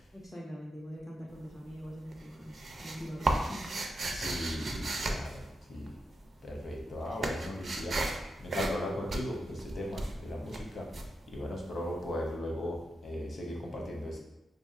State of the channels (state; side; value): normal; both; correlation 0.87